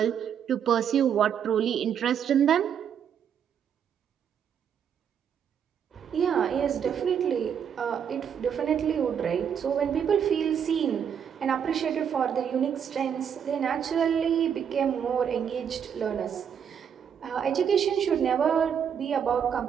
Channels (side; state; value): left; quieter; 8.1 dB